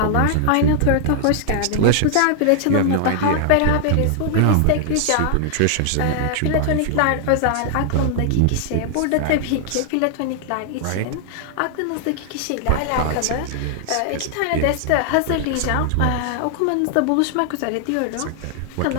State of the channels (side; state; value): both; different; correlation 0.00